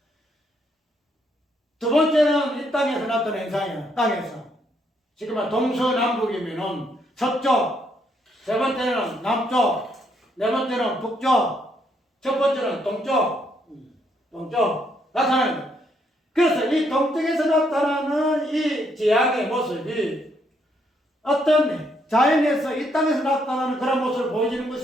두 번째는 이 땅에서 나타나는 현상이에요. 땅에서. 지금 동서남북이면은 서쪽, 세 번째는 남쪽, 네 번째는 북쪽, 첫 번째는 동쪽 나타나는 거예요. 그래서 이 동쪽에서 나타나는 이 지향의 모습이 어떤 자연에서 이 땅에서 나타나는 그런 모습을 보여주는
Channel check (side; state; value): both; normal; correlation 0.73